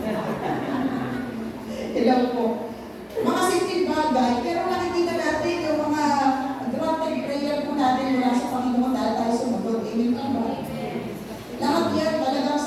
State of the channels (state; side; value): identical; both; correlation 1.00